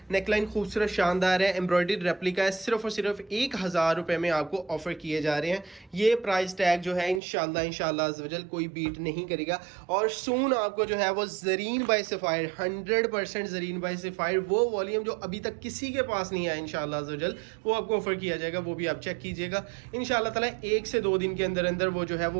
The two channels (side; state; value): left; drops out; at 7.2 s